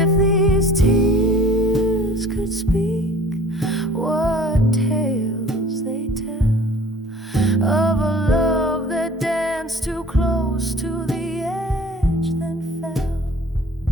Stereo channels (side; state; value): both; normal; correlation 0.48